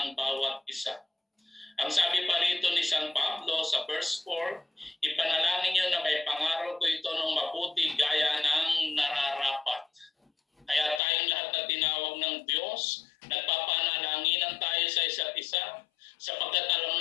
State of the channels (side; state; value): right; drops out; at 11.0 s